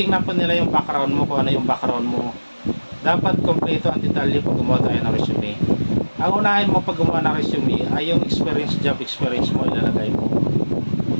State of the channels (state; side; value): inverted; both; correlation -1.00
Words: po nila yung background mo, kung ano yung background mo. Dapat kompleto ang detalye pag gumawa tayo ng resume. Ang unahin mo pag gumawa ng resume ay yung experience, job experience mo ilalagay mo.